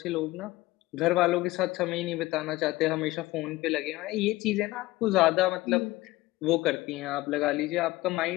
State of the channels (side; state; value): right; quieter; 19.0 dB